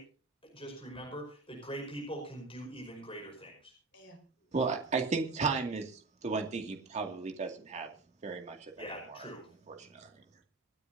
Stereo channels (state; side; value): quieter; left; 3.6 dB